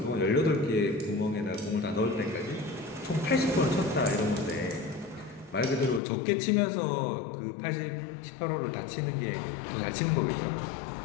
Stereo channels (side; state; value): right; drops out; at 6.0 s